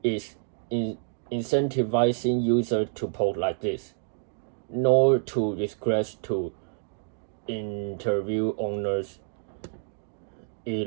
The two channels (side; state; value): left; silent; digital silence